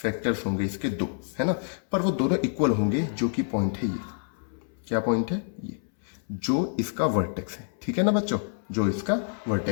होंगे इसके 2, है ना, पर वो दोनों इक्वल होंगे, जो कि पॉइंट है ये। क्या पॉइंट है? ये जो इसका वर्टेक्स है। ठीक है ना बच्चों, जो इसका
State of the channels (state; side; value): silent; right; 60 dB below the other